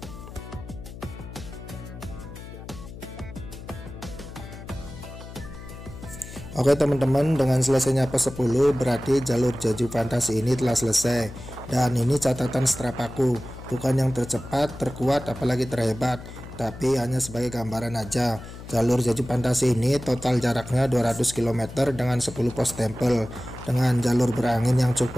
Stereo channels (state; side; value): noise; left; hum, 13 dB below the sound